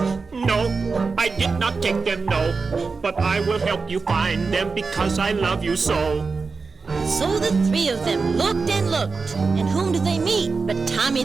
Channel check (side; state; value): left; quieter; 4.5 dB